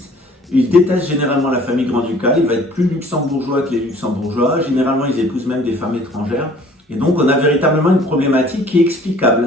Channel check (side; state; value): both; normal; correlation 0.53